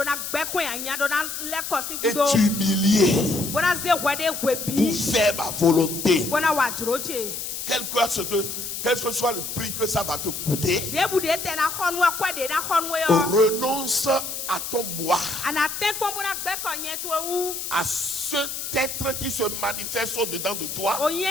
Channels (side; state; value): left; noise; hiss, 6 dB below the sound